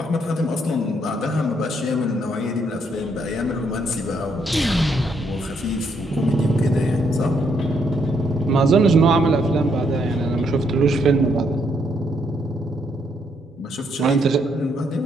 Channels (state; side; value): normal; both; correlation 0.73